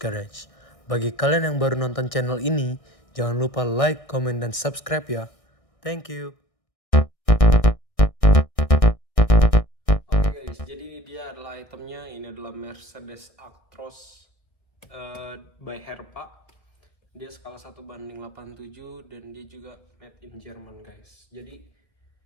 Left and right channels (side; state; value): right; late; 1.6 ms